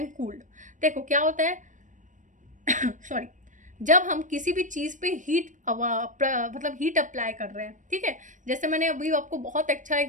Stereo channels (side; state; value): left; late; 0.37 ms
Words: cooled. देखो क्या होता है सॉरी, जब हम किसी भी चीज़ पे मतलब हीट अप्लाई कर रहे हैं, ठीक है। जैसे मैंने अभी आपको बहुत अच्छा